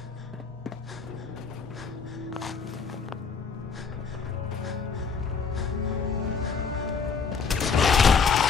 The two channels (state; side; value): quieter; right; 5.5 dB